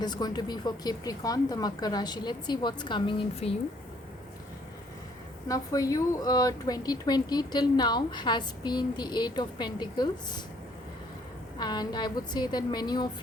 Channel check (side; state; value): both; normal; correlation 0.63